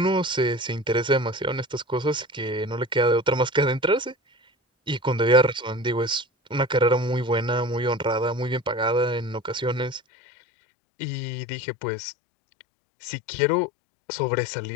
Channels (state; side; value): drops out; right; at 10.0 s